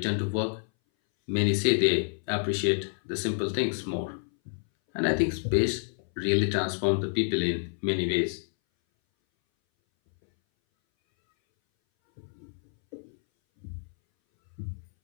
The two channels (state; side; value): silent; right; 59 dB below the other